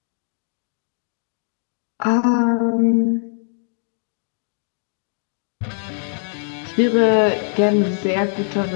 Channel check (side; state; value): right; silent; digital silence